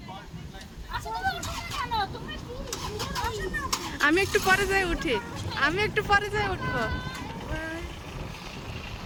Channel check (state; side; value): identical; both; correlation 1.00